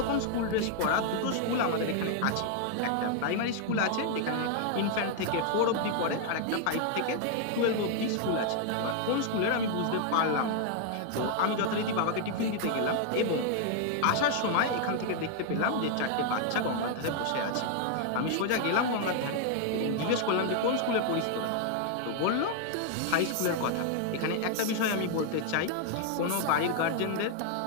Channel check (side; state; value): both; different; correlation 0.00